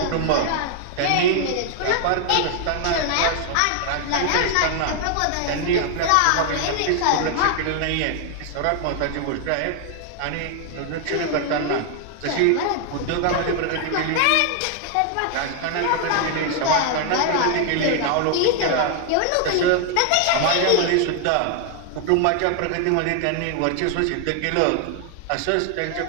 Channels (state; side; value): different; both; correlation 0.00